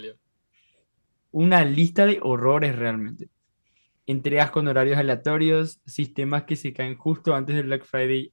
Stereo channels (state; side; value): inverted; both; correlation -1.00